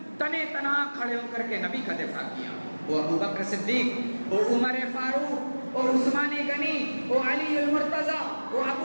تنے تنا کھڑے ہو کر کے نبی کا دفاع کیا، وہ ابو بکر صدیق، وہ عمر فاروق، وہ عثمان غنی، وہ علی المرتضی، وہ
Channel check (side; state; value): both; inverted; correlation -1.00